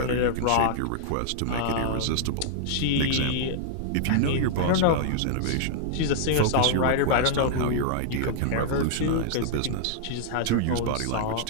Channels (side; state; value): both; different; correlation -0.01